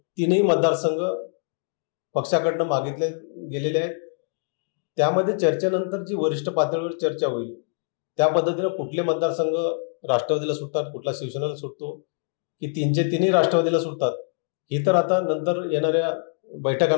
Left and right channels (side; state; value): right; silent; digital silence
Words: 3ही मतदारसंघ पक्षाकडनं मागितले गेलेले आहेत. त्यामध्ये चर्चेनंतर जी वरिष्ठ पातळीवर चर्चा होईल त्या पद्धतीनं कुठले मतदारसंघ राष्ट्रवादीला सुटतात, कुठला शिवसेनेला सुटतो, की 3चे 3ही राष्ट्रवादीला सुटतात, ही तर आता नंतर येणाऱ्या